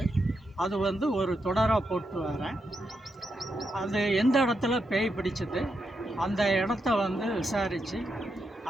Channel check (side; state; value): both; normal; correlation 0.84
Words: அது ஒரு தொடராக போட்டு வரேன். அது எந்த இடத்துல பேய் பிடிச்சது, அந்த இடத்த விசாரித்து